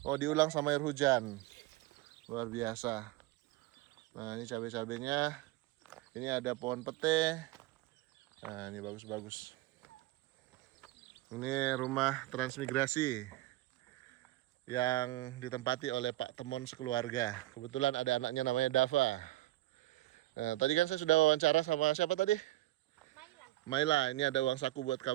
Oh, diulang sama air hujan. Luar biasa. Nah, ini cabai-cabainya. Ini ada pohon pete. Nah, ini bagus-bagus. Ini rumah transmigrasi yang ditempati oleh Pak Temon sekeluarga. Kebetulan ada anaknya namanya Dava. Nah, tadi kan saya sudah wawancara sama siapa tadi? Maila, ini ada uang saku buat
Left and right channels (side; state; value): left; quieter; 17.2 dB